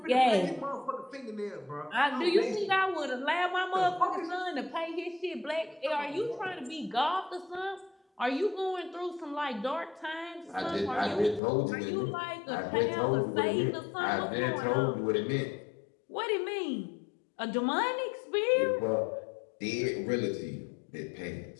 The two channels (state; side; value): drops out; right; at 11.4 s